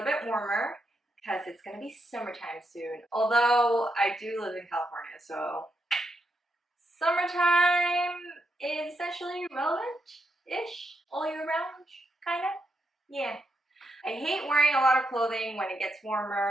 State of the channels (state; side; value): normal; both; correlation 0.81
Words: bit warmer because it's going to be summertime soon. Although I do live in California, so summertime is essentially relevant-ish all year round, kind of. Yeah. I hate wearing a lot of clothing when it gets